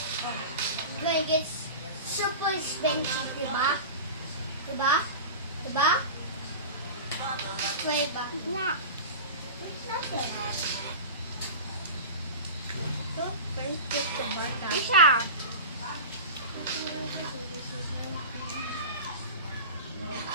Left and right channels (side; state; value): both; inverted; correlation -0.30